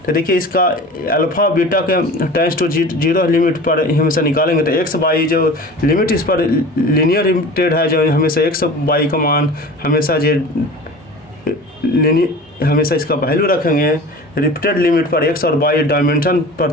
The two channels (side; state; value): both; normal; correlation 0.38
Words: तो देखिए इसका अल्फा बीटा के टाइम्स टू 0 लिमिट पर हमेशा निकालेंगे, तो एक्स बाई जो लिमिट इस पर लीनियर लिमिटेड है, जो हमेशा एक्स बाई का मान हमेशा हमेशा इसका वैल्यू रखेंगे, रिपीटेड लिमिट पर x और y डायमेंशन